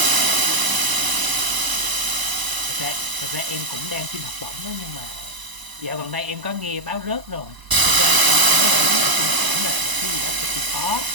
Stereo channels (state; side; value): late; left; 1.0 ms